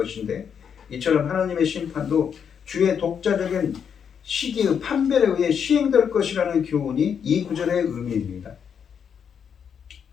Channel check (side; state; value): right; quieter; 7.5 dB